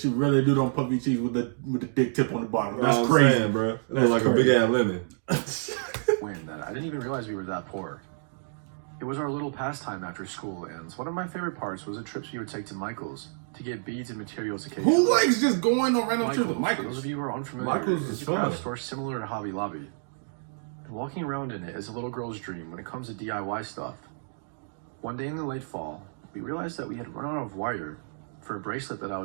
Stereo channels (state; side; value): silent; left; digital silence